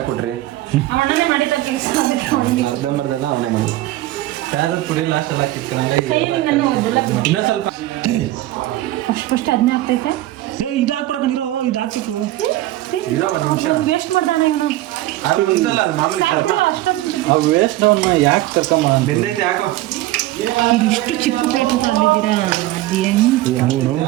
ಅಣ್ಣನೇ ಮಾಡಿದ ಕೆಲಸ. ಅರ್ಧಂಬರ್ದೆಲ್ಲ ಅವನೇ ಮಾಡೋದು. ಖಾರದ ಪುಡಿ ಲಾಸ್ಟ್ ಎಲ್ಲ ಇನ್ನೊಂದು ಸ್ವಲ್ಪ ಫಸ್ಟ್ ಅದನ್ನೇ ಆಗ್ತೈತೆ. ಇದು ಹಾಕ್ಬಿಡಕ ನೀರು, ಇದು ಹಾಕ್ಬೇಕು. ಇರೋ ಒಂದು ನಿಮಿಷ ವೇಸ್ಟ್ ಮಾಡ್ತಾನೆ ಇವನು. ಅದು ಒಂದಲ್ಲ, ಅದು ಮಾಮೂಲಿ ಸ್ವಲ್ಪ ಅಷ್ಟೊಂದು ವೇಸ್ಟ್ ಅವನ್ನ ಯಾಕೆ ಕರ್ಕೊಂಬ ಬೆಂದೈತೆ ಯಾಕೋ. ಇಷ್ಟು ಚಿಕ್ಕ ಪ್ಲೇಟ್ ತಗೊಂಡಿದ್ದೀರಾ? ಅದು ಹೆಂಗ್ ನೋಡು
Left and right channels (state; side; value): quieter; left; 16.1 dB